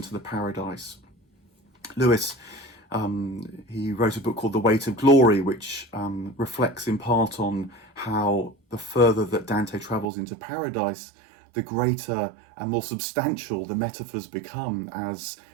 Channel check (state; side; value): drops out; left; at 10.1 s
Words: the paradise. Lewis, he wrote a book called The Weight of Glory, which reflects in part on how the further that Dante travels into paradise, the greater and more substantial the metaphors become as